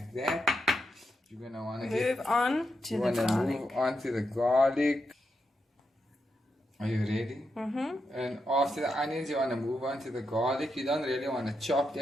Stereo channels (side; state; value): both; normal; correlation 0.85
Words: that, you're going to want to move on to the garlic. Are you ready? Mm-hmm. And after the onions, you want to move on to the garlic. You don't really want to chop